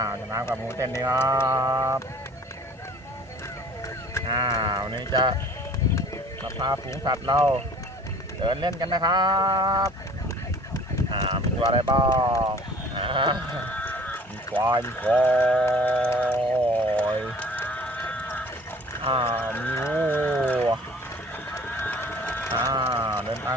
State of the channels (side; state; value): both; normal; correlation 0.49